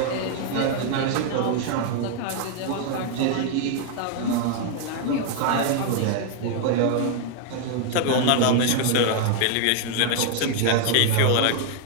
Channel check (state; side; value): different; both; correlation 0.00